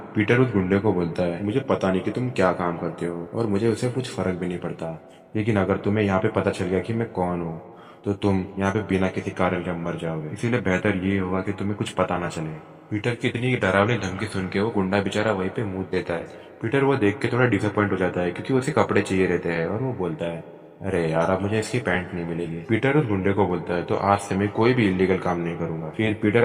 पीटर उस गुंडे को बोलता है, मुझे पता नहीं कि तुम क्या काम करते हो, और मुझे उससे कुछ फर्क भी नहीं पड़ता, लेकिन अगर तुम्हें यहाँ पे पता चल गया कि मैं कौन हूँ तो तुम यहाँ पे बिना किसी कारण के मर जाओगे, इसीलिए बेहतर ये होगा कि तुम्हें कुछ पता ना चले। पीटर की इतनी डरावनी धमकी सुन के वो गुंडा बेचारा वहीं पे मुंह देता है। पीटर वो देख के थोड़ा डिसअपॉइंट हो जाता है, क्योंकि उसे कपड़े चाहिए रहते हैं, और वो बोलता है, अरे यार, अब मुझे इसकी पैंट नहीं मिलेगी। पीटर उस गुंडे को बोलता है, तो आज से मैं कोई भी इलीगल काम नहीं करूंगा। फिर पीटर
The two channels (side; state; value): both; identical; correlation 1.00